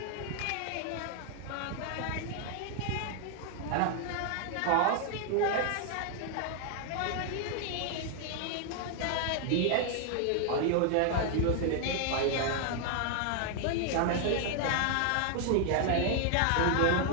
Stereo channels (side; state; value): both; different; correlation 0.00